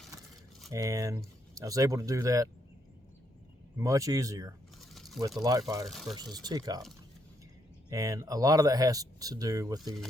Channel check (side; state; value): both; normal; correlation 0.75